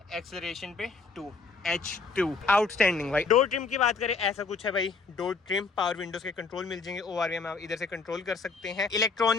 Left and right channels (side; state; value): right; quieter; 4.4 dB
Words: एक्सेलरेशन पे 2, H2 आउटस्टैंडिंग भाई। डोर ट्रिम की बात करें, ऐसा कुछ है भाई डोर ट्रिम। पावर विंडोज के कंट्रोल मिल जाएंगे, ORVM आप इधर से कंट्रोल कर सकते हैं।